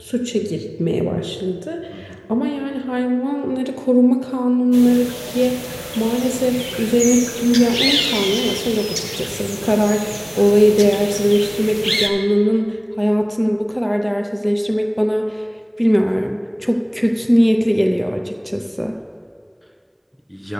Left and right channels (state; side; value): identical; both; correlation 1.00